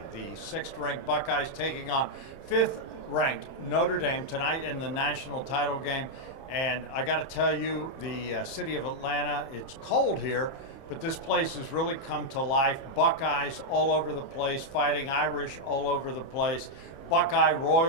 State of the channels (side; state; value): right; late; 29 ms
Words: The 6th-ranked Buckeyes taking on 5th-ranked Notre Dame tonight in the national title game. And I got to tell you, the city of Atlanta, it's cold here, but this place has really come to life. Buckeyes all over the place, fighting Irish all over the place. Buckeye